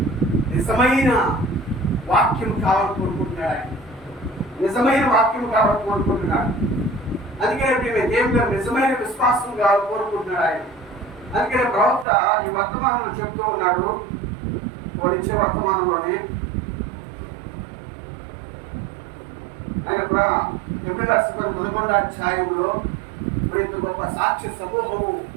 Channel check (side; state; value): left; drops out; at 12.1 s